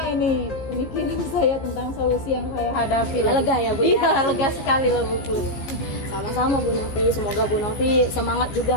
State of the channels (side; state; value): right; late; 15 ms